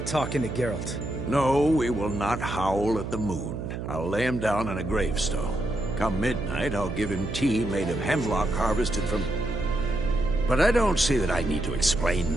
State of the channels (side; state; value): right; noise; hum, 6 dB below the sound